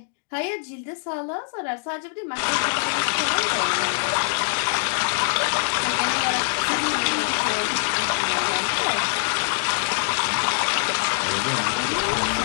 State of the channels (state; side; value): silent; right; digital silence